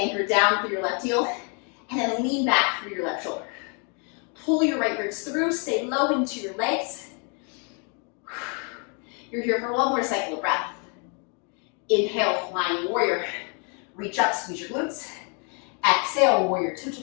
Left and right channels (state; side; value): quieter; right; 37.7 dB